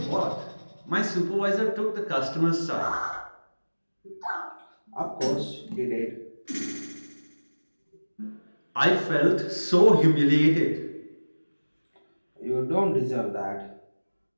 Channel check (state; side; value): inverted; both; correlation -1.00